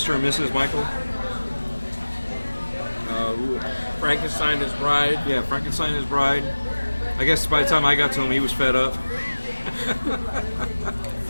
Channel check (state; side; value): inverted; both; correlation -1.00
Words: and Mrs. Michael. Frankenstein, his bride. Yeah, Frankenstein, his bride. I guess by the time I got to him, he was fed up.